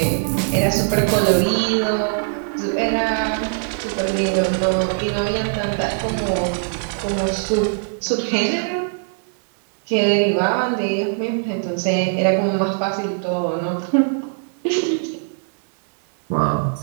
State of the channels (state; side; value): silent; left; 65 dB below the other